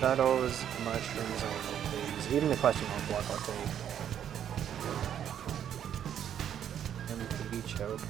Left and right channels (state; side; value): quieter; left; 9.6 dB